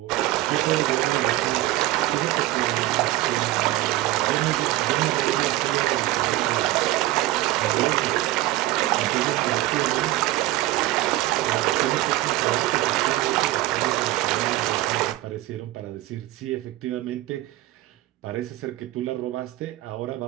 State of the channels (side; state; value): left; quieter; 16.4 dB